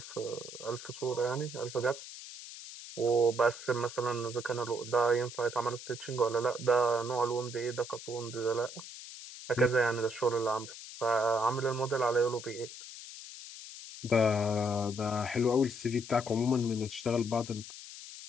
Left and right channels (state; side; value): noise; left; hiss, 13 dB below the sound